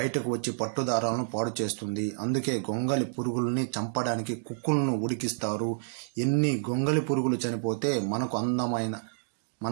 వచ్చి పట్టు దారాలను పాడు చేస్తుంది. అందుకే గొంగలి పురుగుల్ని చంపడానికి కుకున్ను ఉడికిస్తారు. ఎన్ని గొంగలి పురుగులు చనిపోతే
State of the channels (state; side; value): silent; left; digital silence